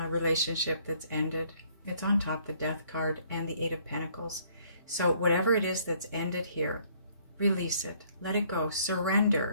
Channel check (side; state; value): both; inverted; correlation -0.63